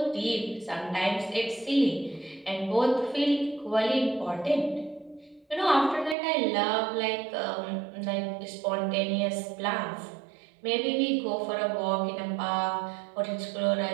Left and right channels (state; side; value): drops out; left; at 6.2 s